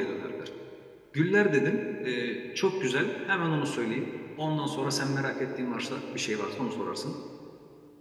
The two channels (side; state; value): both; identical; correlation 1.00